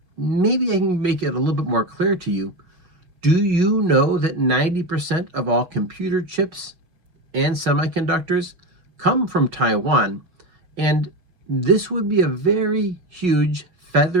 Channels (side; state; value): left; late; 5.4 ms